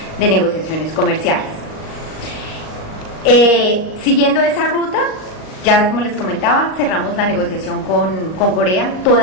de negociaciones comerciales. Siguiendo esa ruta, ya como les comentaba, cerramos la negociación con Corea.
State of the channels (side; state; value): right; late; 38 ms